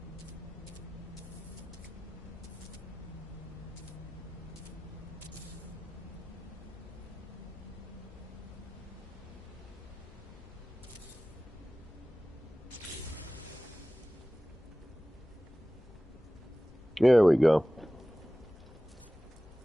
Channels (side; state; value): both; normal; correlation 0.97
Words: There we go.